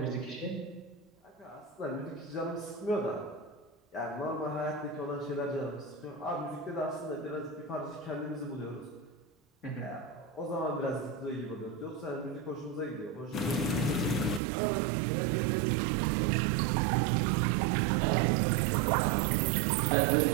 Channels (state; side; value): drops out; left; at 14.4 s